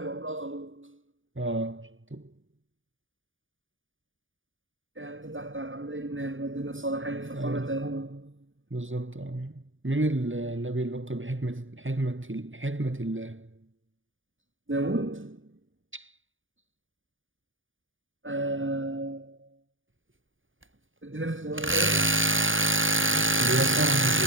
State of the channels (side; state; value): left; late; 0.57 ms